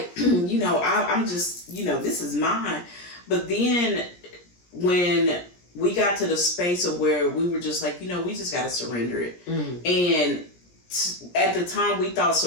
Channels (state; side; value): late; right; 17 ms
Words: I'm just, this is mine. But then when we got to the space of where we were just like, we just got to surrender it. And at the time, we thought